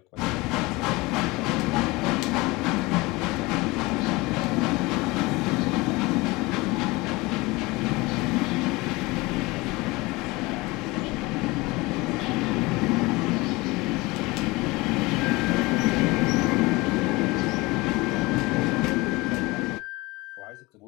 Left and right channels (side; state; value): right; quieter; 22.7 dB